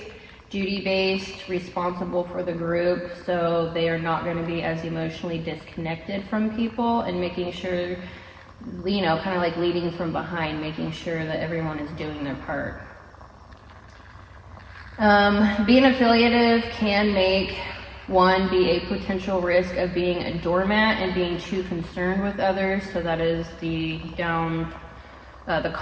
duty-based, responsible for the group, so they are not going to be as emotionally disconnected from people, and making sure, you know, kind of like leading from behind, making sure that everyone is doing their part. Being affiliative can make one be a potential risk of being a doormat and being too concerned with others. So that is the downside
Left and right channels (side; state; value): both; identical; correlation 1.00